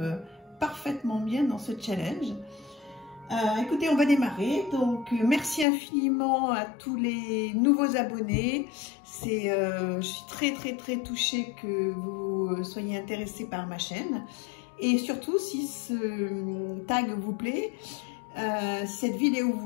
parfaitement bien dans ce challenge. Écoutez, on va démarrer. Donc merci infiniment à tous les nouveaux abonnés. Je suis très touchée que vous soyez intéressés par ma chaîne. Et surtout, si ce tag vous plaît, si cette vidéo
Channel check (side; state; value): right; drops out; at 5.7 s